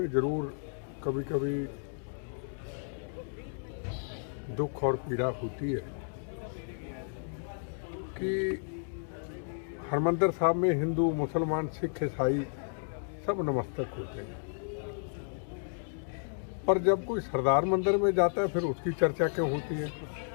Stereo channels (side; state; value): right; silent; digital silence